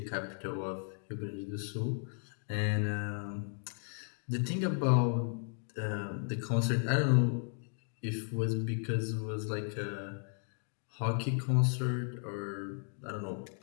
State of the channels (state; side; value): silent; right; 54 dB below the other